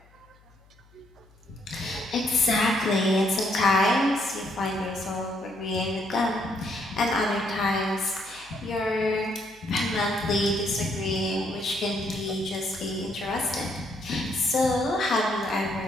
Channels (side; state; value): left; noise; hum, 29 dB below the sound